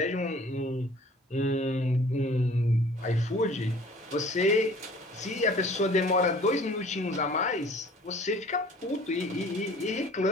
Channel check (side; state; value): both; normal; correlation 0.50